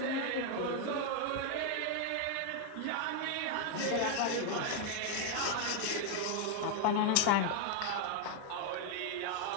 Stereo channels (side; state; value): both; different; correlation 0.01